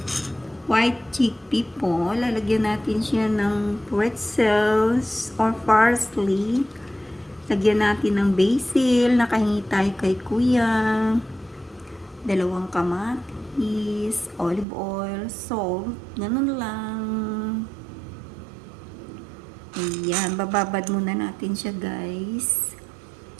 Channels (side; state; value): left; drops out; at 14.7 s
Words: White chickpea po. Lalagyan natin siya ng pretzels or parsley. Lagyan natin ng basil. Nakahingi tayo kay kuya. 2 kamatis, olive oil, salt, ganun lang. Ayan, bababad muna natin siya guys.